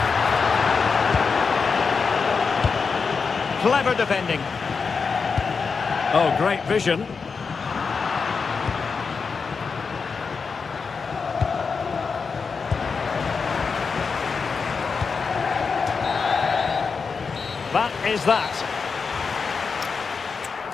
Clever defending. Oh, great vision. That is that.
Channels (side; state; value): right; quieter; 5.2 dB